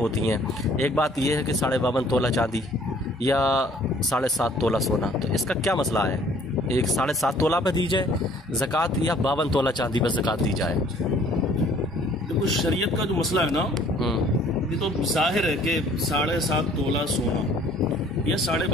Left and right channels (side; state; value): both; normal; correlation 0.57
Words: हैं। एक बात ये है कि 52.5 तोला चांदी या 7.5 तोला सोना, तो इसका क्या मसला है? एक 7.5 तोला पे दी जाए ज़कात या 52 तोला चांदी पर ज़कात दी जाए? देखो शरीयत का जो मसला है ना, ये तो जाहिर है कि 7.5 तोला सोना या